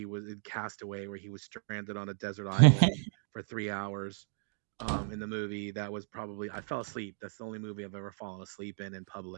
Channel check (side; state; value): left; silent; 55 dB below the other